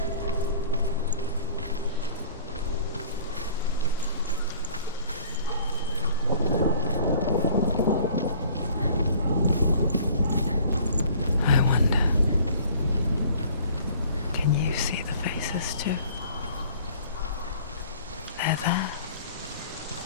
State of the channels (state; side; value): inverted; both; correlation -0.51